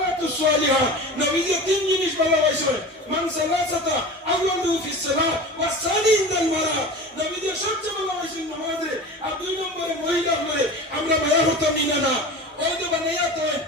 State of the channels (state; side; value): normal; both; correlation 0.34